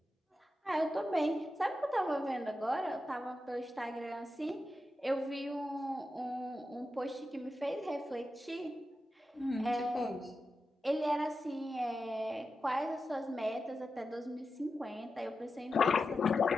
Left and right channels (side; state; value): both; normal; correlation 0.90